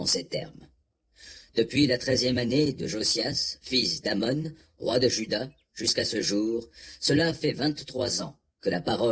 ces termes. Depuis la 13e année de Josias, fils d'Amon, roi de Juda, jusqu'à ce jour, cela fait 23 ans que la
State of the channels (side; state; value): both; identical; correlation 1.00